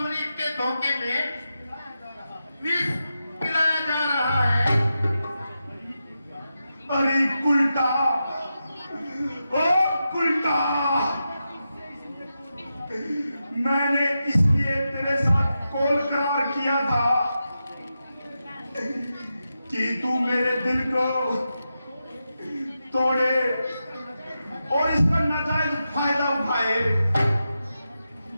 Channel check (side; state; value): both; inverted; correlation -0.89